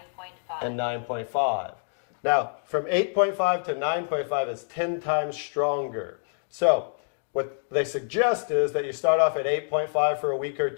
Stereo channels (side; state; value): right; silent; digital silence